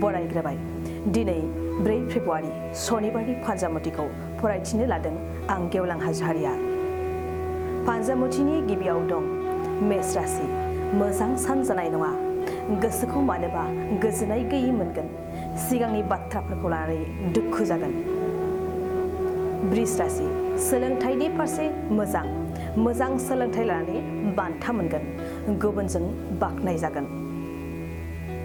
बरायग्रोबाय। दिनै 4 फेब्रुवारि सनिबारनि फान्जामुथिखौ फरायथिनो लादों आं गेवलां हाज'वारिया। फान्जामुथिनि गिबियाव दं मेष राशि। मोजां सान जानाय नङा। गोसोखौ मानोबा गोजोननाय गैयै मोनगोन। सिगांनि बाथ्राफोरखौ लानानै दुखु जागोन। वृष राशि। सोलोंथाइनि फारसे मोजां सोलोंथाइ लानानै बान्था मोनगोन। गुबुनजों बाख्नाय जागोन।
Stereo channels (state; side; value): identical; both; correlation 1.00